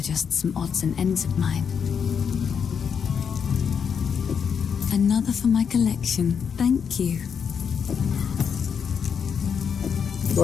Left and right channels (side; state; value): right; quieter; 6.9 dB